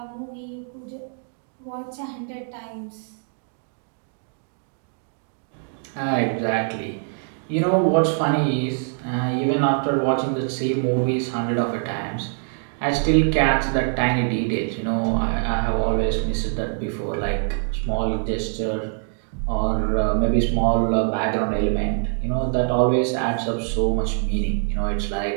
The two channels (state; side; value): silent; left; 62 dB below the other